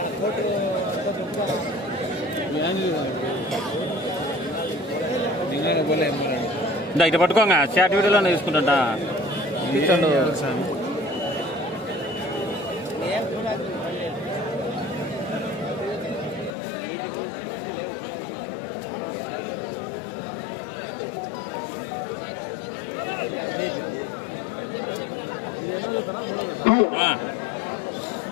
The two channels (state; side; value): drops out; right; at 16.5 s